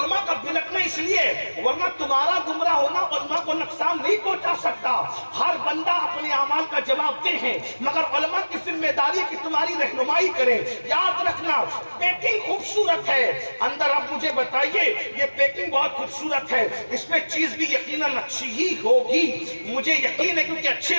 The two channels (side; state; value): both; inverted; correlation -1.00